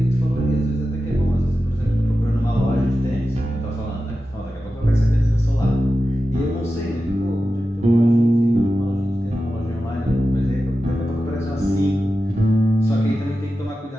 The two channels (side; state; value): both; normal; correlation 0.92